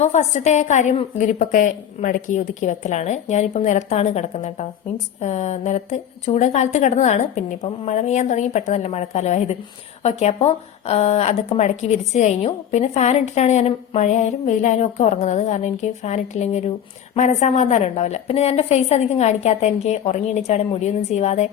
ഫസ്റ്റത്തെ കാര്യം വിരിപ്പൊക്കെ മടക്കി ഒതുക്കി വെക്കലാണ്. ഞാനിപ്പം നിലത്താണ് കിടക്കുന്നത് കേട്ടോ. മീൻസ് നിലത്ത് ചൂട് കാലത്ത് കിടന്നതാണ്, പിന്നെ ഇപ്പം മഴ പെയ്യാൻ തുടങ്ങി, പെട്ടെന്നല്ല മഴക്കാലമായത്. ഓക്കെ, അപ്പോൾ അതൊക്കെ മടക്കി വിരിച്ചു കഴിഞ്ഞു. പിന്നെ ഫാൻ ഇട്ടിട്ടാണ് ഞാൻ മഴയായാലും വെയിലായാലും ഒക്കെ ഉറങ്ങുന്നത്. കാരണം എനിക്ക് ഫാൻ ഇട്ടില്ലെങ്കിൽ ഒരു മനസ്സമാധാനം ഉണ്ടാവില്ല. പിന്നെ ഞാൻ എൻ്റെ ഫേസ് അധികം കാണിക്കാത്ത, എനിക്ക് ഉറങ്ങി എണീച്ചാടെ മുടിയൊന്നും ചെയ്യാതെ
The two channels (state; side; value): quieter; right; 9.5 dB